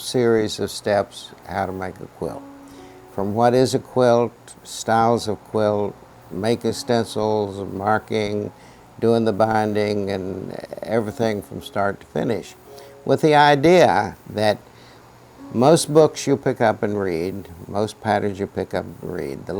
of steps how to make a quilt. From what is a quilt, styles of quilt, making stencils, marking, doing the binding, and everything from start to finish, with the idea that most books you pick up and read, most patterns you pick up and read, the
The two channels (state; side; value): identical; both; correlation 1.00